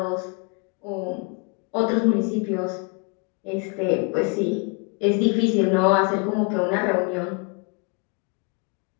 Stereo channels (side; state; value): right; quieter; 34.5 dB